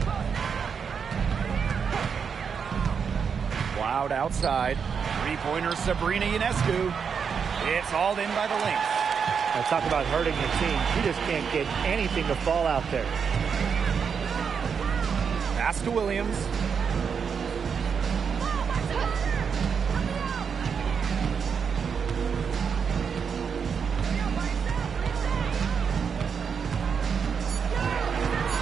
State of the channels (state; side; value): quieter; left; 6.5 dB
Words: Cloud outside. Three-pointer Sabrina Ionescu. It's hauled in by the Lynx. I talk about hurting your team. She just can't get anything to fall out there. Pass to Williams.